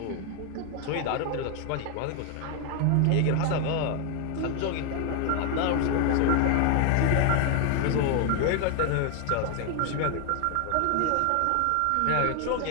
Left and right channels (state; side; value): different; both; correlation 0.01